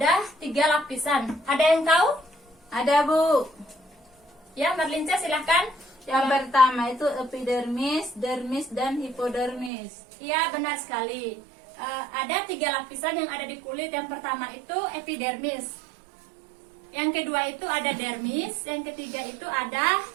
3 lapisan. Ada yang tahu? Ada, Bu. Ya, Merlinca silahkan. Yang pertama itu epidermis, dermis, dan hipodermis. Iya, benar sekali. Ada 3 lapisan yang ada di kulit. Yang pertama itu epidermis. Yang kedua itu ada dermis. Yang ketiga itu ada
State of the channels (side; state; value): left; drops out; at 9.7 s